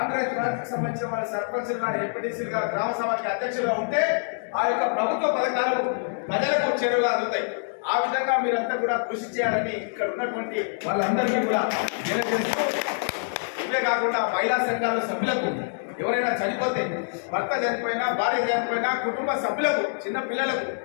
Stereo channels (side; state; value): right; silent; 61 dB below the other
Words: పార్టీకి సంబంధించిన వాళ్ళ సర్పంచులుగా, ఎంపీటీసీలుగా, గ్రామ సభకి అధ్యక్షులుగా ఉంటే ఆ యొక్క ప్రభుత్వ పథకాలు ప్రజలకు చేరువగా అందుతాయి. ఆ విధంగా మీరంతా కూడా కృషి చేయాలని ఇక్కడ ఉన్నటువంటి వాళ్ళందరికీ కూడా తెలియజేస్తూ, ఇవే కాకుండా మహిళా సంఘాల సభ్యులకు ఎవరైనా చనిపోతే, భర్త చనిపోయినా, భార్య చనిపోయినా, కుటుంబ సభ్యులకు, చిన్న పిల్లలకు